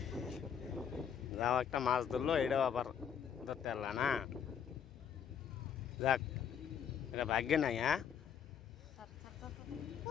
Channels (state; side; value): quieter; right; 8.1 dB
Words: যাও একটা মাছ ধরলো, এটাও আবার ধরতে পারলা না। যাক, এটা ভাগ্যে নাই। হ্যাঁ